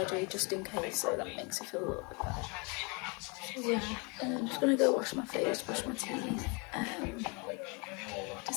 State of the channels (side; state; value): right; quieter; 31.4 dB